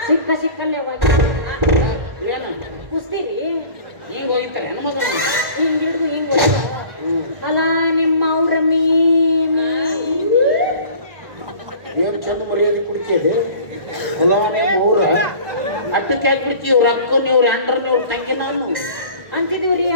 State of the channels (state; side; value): late; left; 1.4 ms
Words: ಸಿಕ್ಕಲ್ಲೇ ಕುಸ್ತೀರಿ ಹಿಂಗ ಹೋಗ್ತಾರೆ ಹೆಣ್ಮಕ್ಳು. ಹಿಂಗ್ ಹಿಡಿದು ಹಿಂಗ್ ಅಲ್ಲ ನಿಮ್ಮ ಅವ್ರ ಮೀ ಹಾಕಿದೆ ಮೂರ ಅಟ್ಟಕ್ಕೆ ಹಾಕ್ಬಿಡ್ತಿ ಇವ್ರ ಅಕ್ಕ ಇವ್ರ ಅಂಡ್ರ ಇವ್ರ ತಂಗಿ ನಾನು ಅಂತಿದೀವ್ರಿ